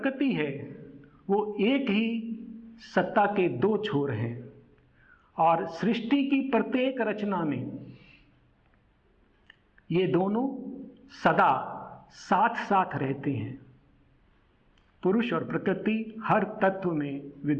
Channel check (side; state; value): both; identical; correlation 1.00